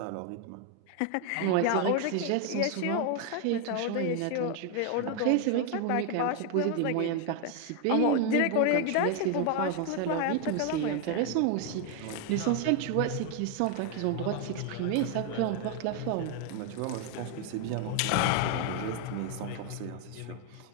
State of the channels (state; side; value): different; both; correlation 0.00